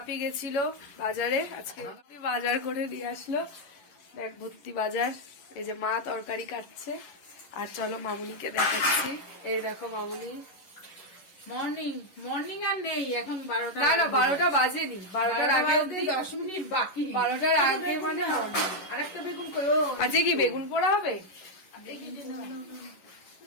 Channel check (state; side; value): late; right; 11 ms